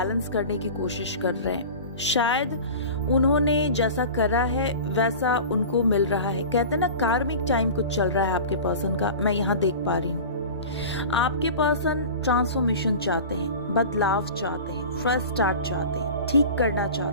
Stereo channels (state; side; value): inverted; both; correlation -0.35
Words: करने की कोशिश कर रहे हैं। शायद उन्होंने जैसा करा है वैसा उनको मिल रहा है। कहते हैं ना, कार्मिक टाइम कुछ चल रहा है आपके पर्सन का, मैं यहाँ देख पा रही हूँ। आपके पर्सन ट्रांसफॉर्मेशन चाहते हैं, बदलाव चाहते हैं, फ्रेश स्टार्ट चाहते हैं, ठीक करना